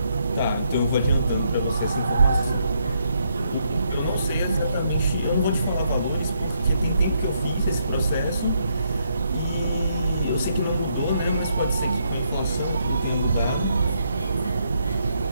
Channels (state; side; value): inverted; both; correlation -0.75